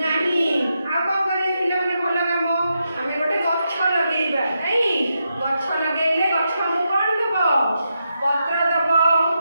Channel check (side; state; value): both; inverted; correlation -0.85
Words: नहीं आ को करे पिले माने भलो काम आमे गोटे गछ लगेइबा नहीं गछ लगेइले गछ हमु कोन देबो पत्र देबो